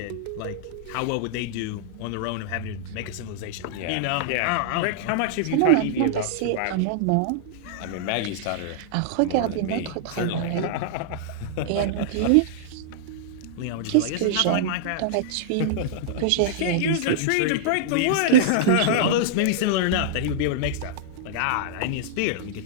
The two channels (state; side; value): different; both; correlation -0.02